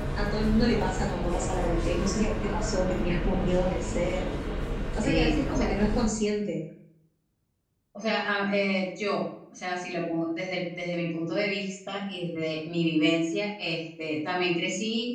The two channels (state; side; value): identical; both; correlation 1.00